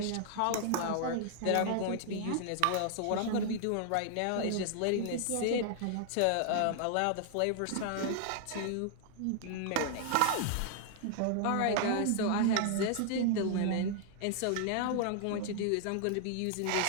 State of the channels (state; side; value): different; both; correlation 0.00